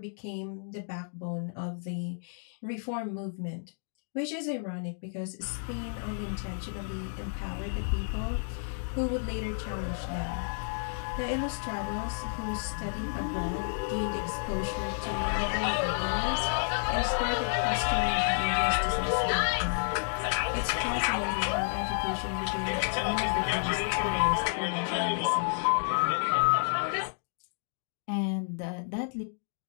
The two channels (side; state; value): right; silent; digital silence